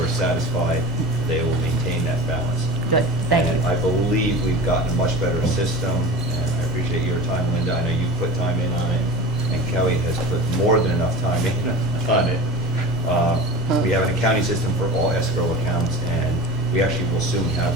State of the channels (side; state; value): both; normal; correlation 0.34